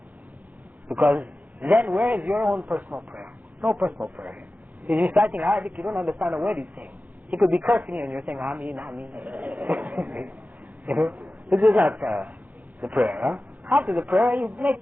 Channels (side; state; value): left; late; 0.079 ms